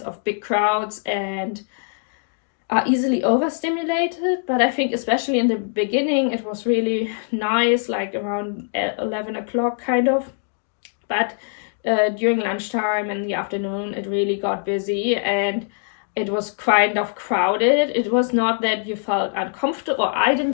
of big crowds and are easily overstimulated. But I think especially in the beginning it was really nice, like around 11 o'clock kind of, but during lunchtime and the afternoon it really got busy and it was kind of crowded. It was not that you felt uncomfortable, or I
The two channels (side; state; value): right; silent; digital silence